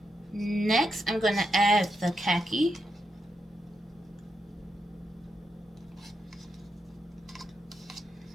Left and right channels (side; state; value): both; normal; correlation 0.83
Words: Next, I'm going to add the khaki.